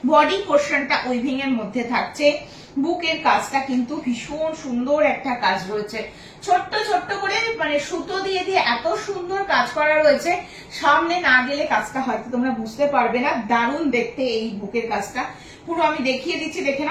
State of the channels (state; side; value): identical; both; correlation 1.00